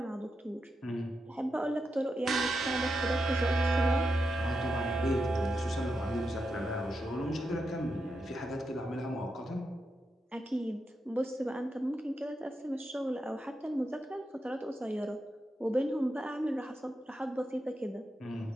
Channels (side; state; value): both; normal; correlation 0.86